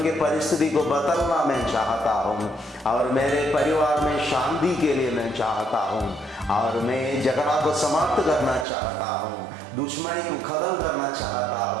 के परिस्थिति को बदलना मैं चाहता हूँ और मेरे परिवार में शांति के लिए मैं चाहता हूँ और मैं झगड़ा को समाप्त करना चाहता हूँ, दुश्मनी को खत्म करना चाहता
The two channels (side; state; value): left; drops out; at 8.7 s